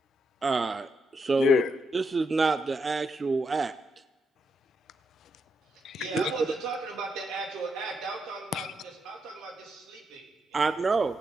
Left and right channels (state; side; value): normal; both; correlation 0.82